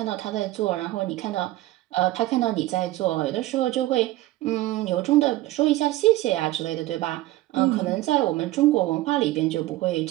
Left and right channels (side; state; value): left; quieter; 16.9 dB